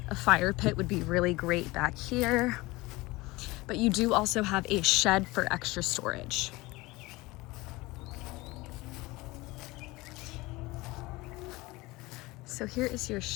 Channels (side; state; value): right; quieter; 21.4 dB